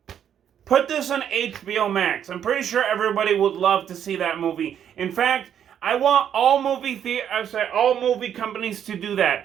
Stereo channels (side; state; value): left; quieter; 9.2 dB